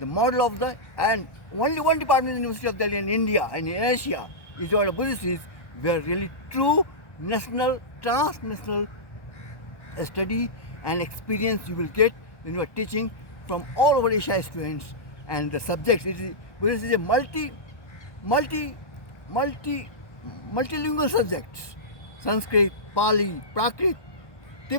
model of the, and only one department in the University of Delhi in India and in Asia is what Buddhist is, where really true national, transnational study and experience you will get when you are teaching from all over Asia students, and the subjects. Buddhist is a multilingual subjects: Sanskrit, Pali, Prakrit,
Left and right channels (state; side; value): late; right; 1.1 ms